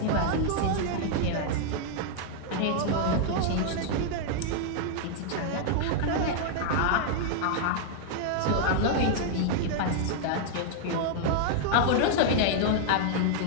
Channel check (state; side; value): different; both; correlation -0.01